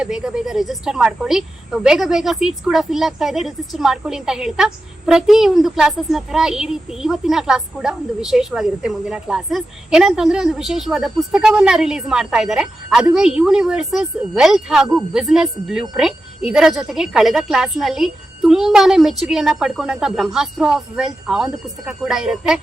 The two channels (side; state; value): both; normal; correlation 0.91